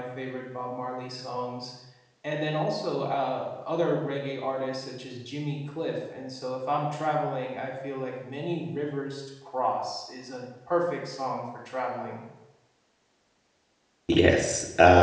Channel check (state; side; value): identical; both; correlation 1.00